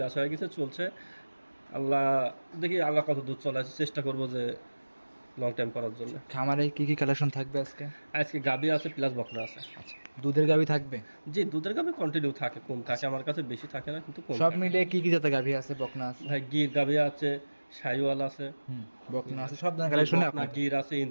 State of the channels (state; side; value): inverted; both; correlation -1.00